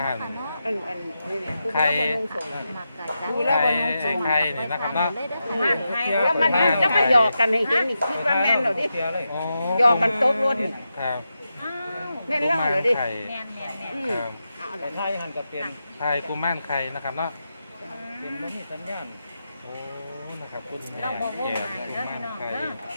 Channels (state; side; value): inverted; both; correlation -0.88